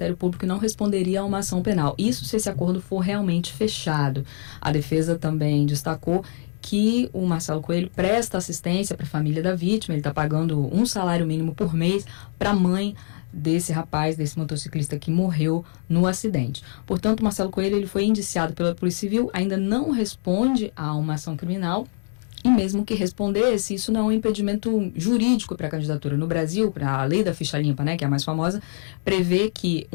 Público e não responderia a uma ação penal. Isso se esse acordo for realmente fechado. A defesa também destacou que o Marcelo Coelho presta assistência para a família da vítima, ele está pagando um salário mínimo por mês para a mãe desse rapaz, desse motociclista que morreu no acidente. Portanto, Marcelo Coelho ele foi indiciado pela Polícia Civil, ainda não responde a uma ação criminal, e mesmo que respondesse, isso não é um impedimento jurídico para a candidatura. No Brasil, para a lei da ficha limpa, né, que é a mais famosa, prevê que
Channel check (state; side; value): silent; right; digital silence